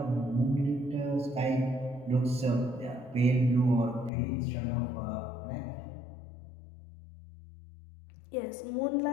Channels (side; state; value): right; drops out; at 4.1 s